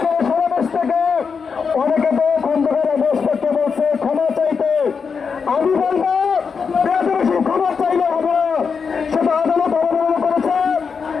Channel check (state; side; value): quieter; right; 5.7 dB